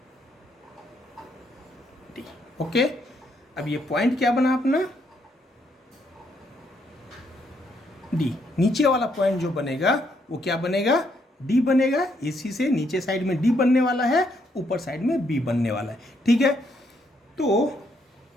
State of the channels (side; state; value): both; normal; correlation 0.74